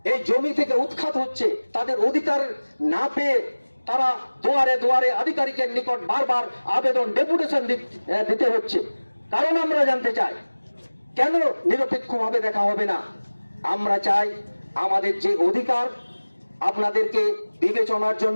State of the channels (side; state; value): both; inverted; correlation -1.00